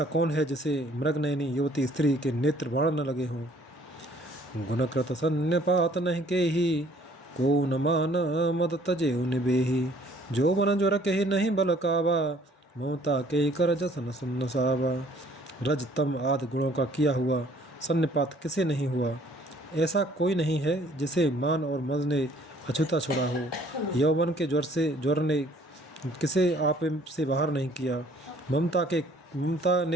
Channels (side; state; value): both; normal; correlation 0.58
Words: कौन है जिसे मृगनयनी युवती स्त्री के नेत्र बाण न लगे हों। गुणकृत सन्यपात नहीं के ही, को न मान मद तजे निबेही। जो मन जो रखे नहीं बल कावा, ममता के कर जसन सुन्न सावा। रज तम आदि गुणों का किया हुआ सन्निपात किसे नहीं हुआ। ऐसा कोई नहीं है जिसे मान और मद ने अछूता छोड़ा हो। यौवन के ज्वर ने किसे आप से बाहर नहीं किया। ममता